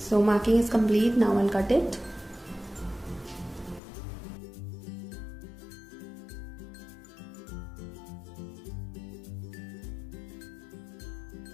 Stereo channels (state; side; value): drops out; right; at 3.8 s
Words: marking is complete. Now I'll cut it.